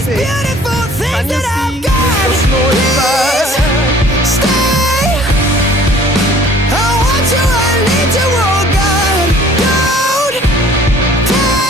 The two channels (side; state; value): both; normal; correlation 0.53